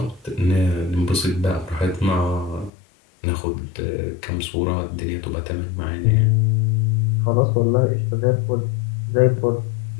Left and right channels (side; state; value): right; drops out; at 2.7 s